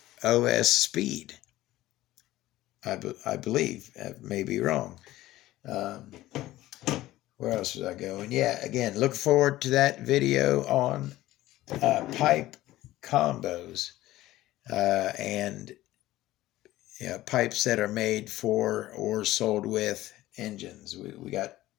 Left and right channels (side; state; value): right; quieter; 16.0 dB